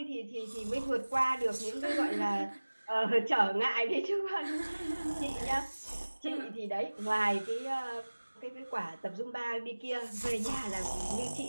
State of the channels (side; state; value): both; inverted; correlation -1.00